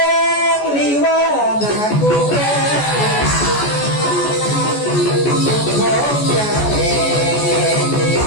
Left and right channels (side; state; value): right; late; 14 ms